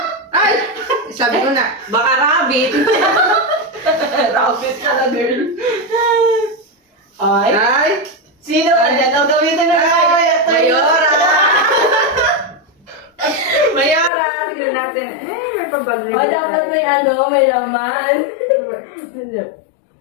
Ay! Sabi ko na, baka rabbit. Rabbit pala, girl. Ay. Ay! Sino ka dyan? O, gamitin na tayo. Mayora! Mayora! Tignan natin. Ay, may pabag O, dapat may ano, may laman.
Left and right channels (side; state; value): right; drops out; at 14.1 s